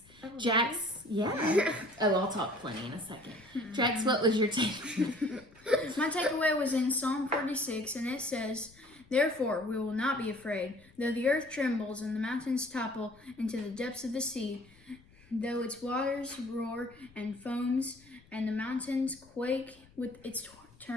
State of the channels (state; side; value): noise; left; rumble, 27 dB below the sound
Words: Jax, yeah. Oh, I'll talk plenty in a second. Jax, what was your takeaway? My takeaway was in Psalm 46, and it says, "Therefore we will not be afraid, though the earth trembles and the mountains topple into the depths of the sea, though its waters roar and foams, and the mountains quake with its